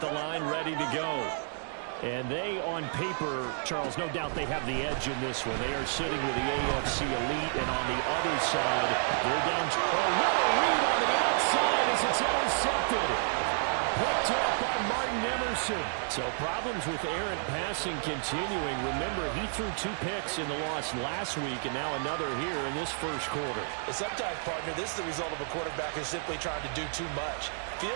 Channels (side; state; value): left; silent; digital silence